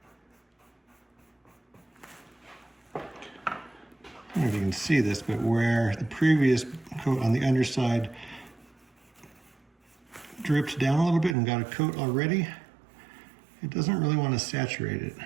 on. I don't know if you can see this, but where the previous coat on the underside dripped down a little bit and got a coat already, it doesn't really want to saturate it.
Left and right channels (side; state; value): left; drops out; at 11.4 s